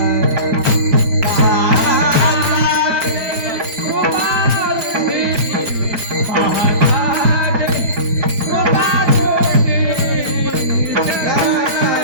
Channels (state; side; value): late; left; 4.4 ms